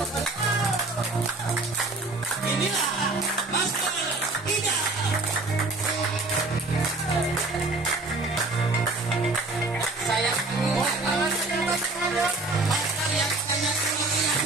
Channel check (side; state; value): left; quieter; 3.2 dB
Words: Inilah Master Ida. Saya Master yang sangat luar